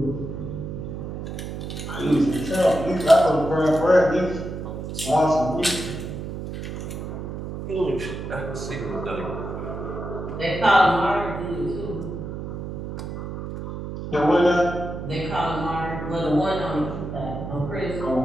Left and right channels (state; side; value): noise; right; hum, 7 dB below the sound